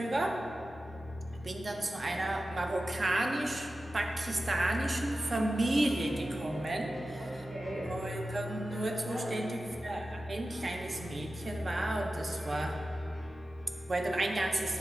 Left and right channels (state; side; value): normal; both; correlation 0.94